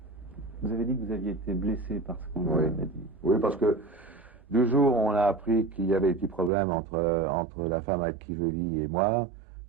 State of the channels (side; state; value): left; drops out; at 6.5 s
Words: Vous avez dit que vous aviez été blessé par ce qu'on avait dit. Oui, parce que du jour où on a appris qu'il y avait des petits problèmes entre la femme avec qui je vis et moi,